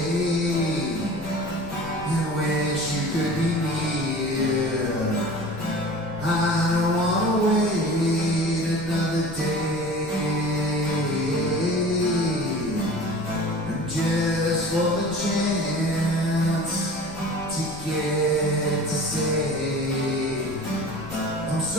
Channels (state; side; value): noise; left; rumble, 16 dB below the sound